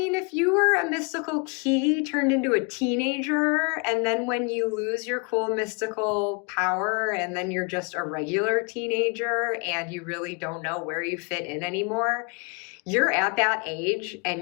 if you were a mystical key turned into a teenager, and then when you lose your cool mystical power, and then you're just a regular teenager, and you really don't know where you fit in anymore, you're at that age,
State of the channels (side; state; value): right; quieter; 33.3 dB